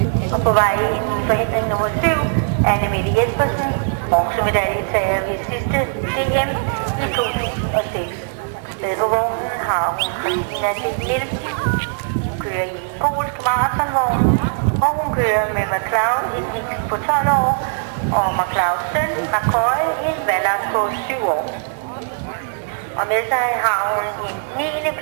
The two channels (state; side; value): silent; left; 56 dB below the other